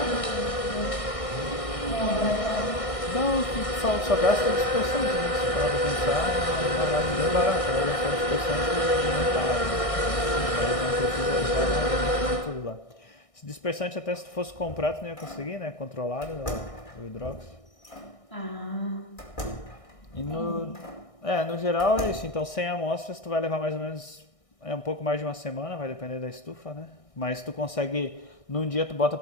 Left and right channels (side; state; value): right; late; 1.6 ms